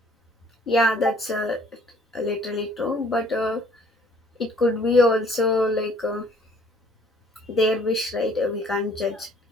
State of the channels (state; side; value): normal; both; correlation 0.58